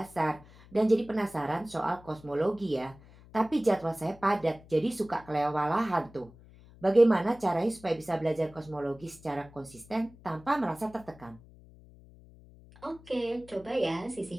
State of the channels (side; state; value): left; noise; hum, 22 dB below the sound